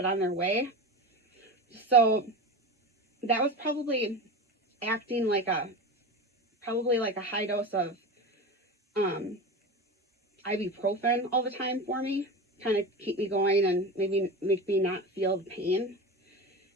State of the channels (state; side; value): normal; both; correlation 0.27